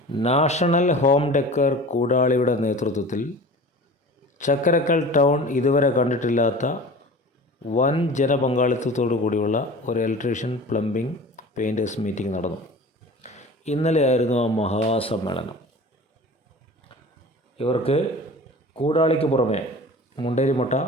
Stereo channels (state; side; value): normal; both; correlation 0.39